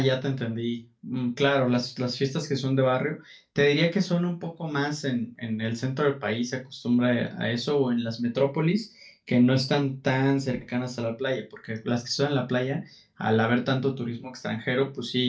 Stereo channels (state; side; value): identical; both; correlation 1.00